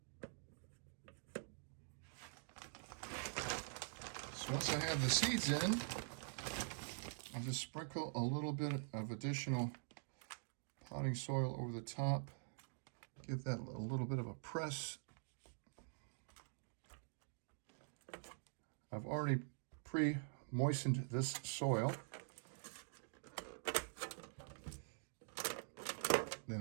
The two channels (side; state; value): left; silent; digital silence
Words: So once I have the seeds in, I'll just sprinkle a little bit of additional potting soil over the top. Give that a little bit of a press. I've already pre-moistened this soil.